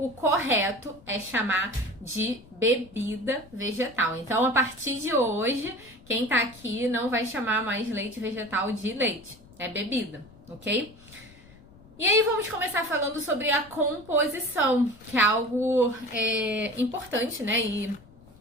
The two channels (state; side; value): noise; left; rumble, 24 dB below the sound